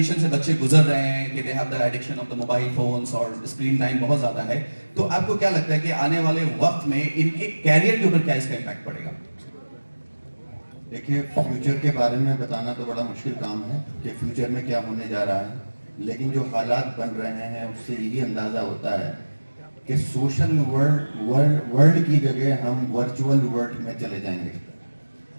से बच्चे गुजर रहे हैं कि they have the addiction of the mobile phones और स्क्रीन टाइम बहुत ज़्यादा है, तो आपको क्या लगता है कि आने वाले वक्त में इनके कैरियर के ऊपर क्या इसका इम्पैक्ट पड़ेगा? देखिए, फ्यूचर के बारे में बताना तो बड़ा मुश्किल काम है कि फ्यूचर में क्या होने जा रहा है, लेकिन जो हालात बन रहे हैं उससे यही अंदाज़ा होता है कि सोशल वर्ल्ड की जगह हम वर्चुअल वर्ल्ड में चले जाएंगे।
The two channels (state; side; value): inverted; both; correlation -1.00